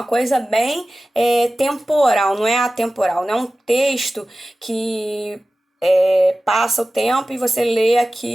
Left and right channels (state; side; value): normal; both; correlation 0.96